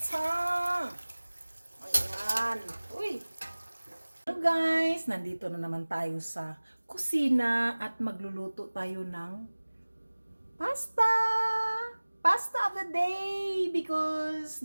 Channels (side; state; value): both; inverted; correlation -1.00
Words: Ayan. Uy. Hello guys, nandito na naman tayo sa kusina at magluluto tayo ng pasta. Pasta of the day because